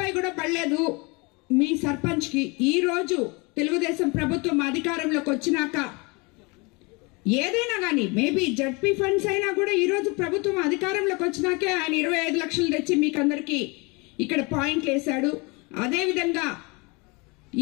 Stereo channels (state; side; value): quieter; right; 28.1 dB